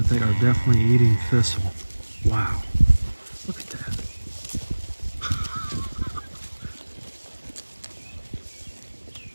they are definitely eating thistle. Wow. Look at that.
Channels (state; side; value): inverted; both; correlation -1.00